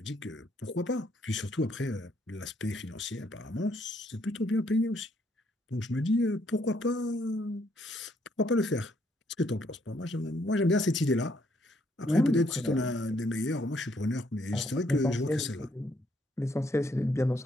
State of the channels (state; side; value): normal; both; correlation 0.70